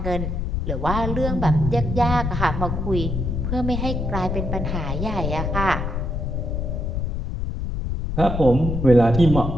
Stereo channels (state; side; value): noise; left; rumble, 2 dB below the sound